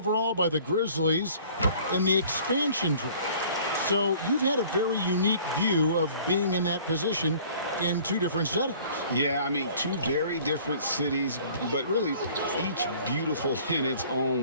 by the Grizzlies in the expansion draft. So you've had a very unique view of being in that position in 2 different settings. Yeah, I mean, 2 very different cities, but really each beautiful in its own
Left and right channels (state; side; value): inverted; both; correlation -0.51